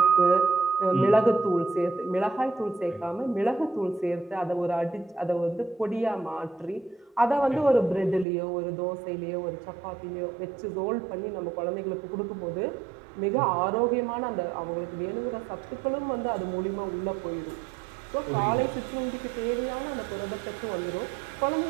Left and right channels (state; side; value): drops out; left; at 8.2 s